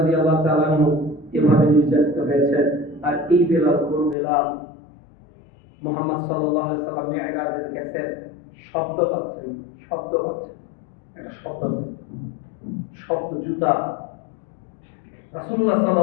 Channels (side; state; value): right; drops out; at 4.2 s